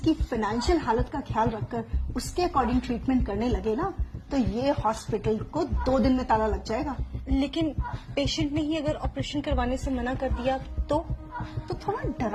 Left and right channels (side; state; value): both; identical; correlation 1.00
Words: फाइनेंशियल हालत का ख्याल रखकर उसके अकॉर्डिंग ट्रीटमेंट करने लगे ना तो ये हॉस्पिटल को 2 दिन में ताला लग जाएगा। लेकिन पेशेंट ने ही अगर ऑपरेशन करवाने से मना कर दिया तो थोड़ा